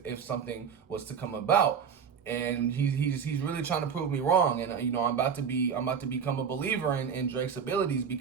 something was to come about. And he's really trying to prove me wrong. And I'm about to become a believer in Drake's abilities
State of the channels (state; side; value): quieter; left; 6.9 dB